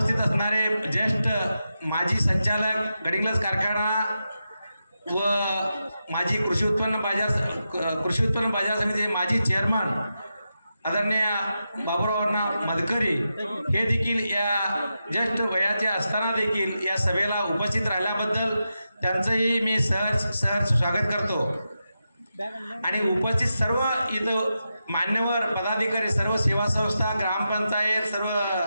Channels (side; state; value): both; inverted; correlation -0.89